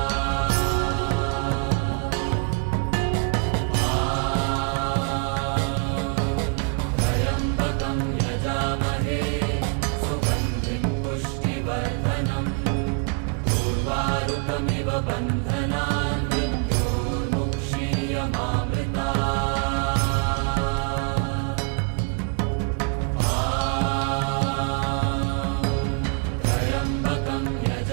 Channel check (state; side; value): quieter; left; 38.2 dB